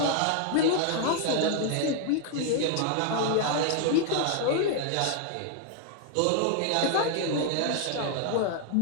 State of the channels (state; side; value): different; both; correlation 0.00